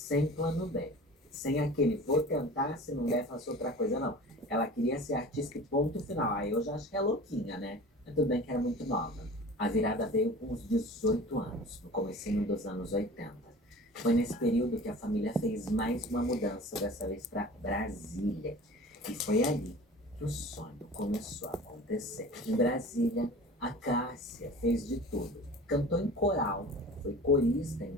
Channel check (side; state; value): both; normal; correlation 0.40